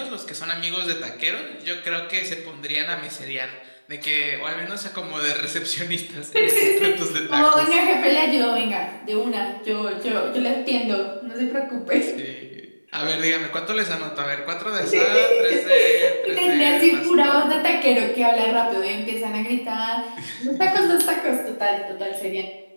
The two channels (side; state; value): both; inverted; correlation -1.00